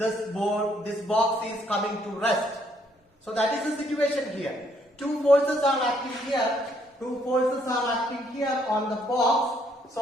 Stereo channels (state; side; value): normal; both; correlation 0.69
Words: box is coming to rest. So that is the situation here. Two forces are acting here. Two forces are acting here on the box.